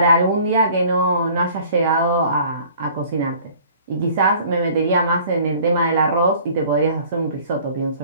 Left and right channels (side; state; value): both; inverted; correlation -0.51